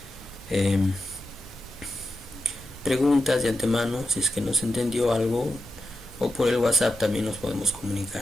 preguntas de antemano, si es que no se entendió algo, o por el WhatsApp también nos podemos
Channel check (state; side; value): normal; both; correlation 0.88